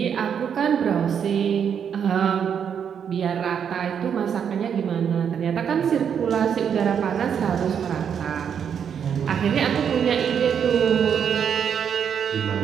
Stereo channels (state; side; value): quieter; left; 7.8 dB